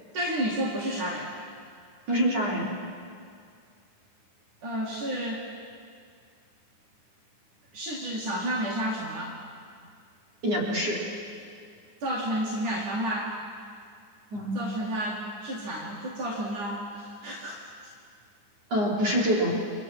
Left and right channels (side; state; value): left; late; 9.7 ms